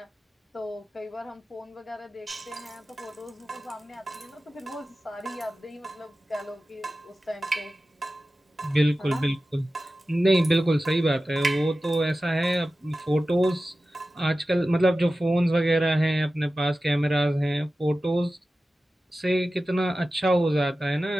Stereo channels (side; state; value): both; normal; correlation 0.95